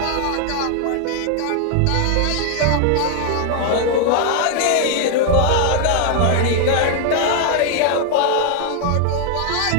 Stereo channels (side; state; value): both; different; correlation 0.00